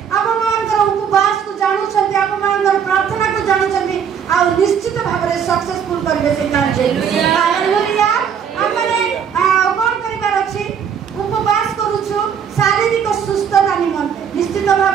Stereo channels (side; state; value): left; quieter; 7.7 dB